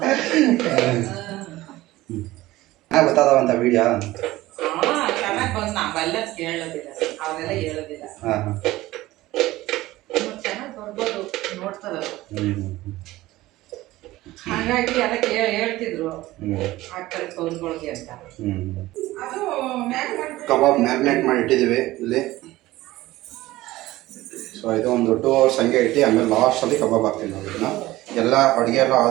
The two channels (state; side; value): quieter; left; 17.4 dB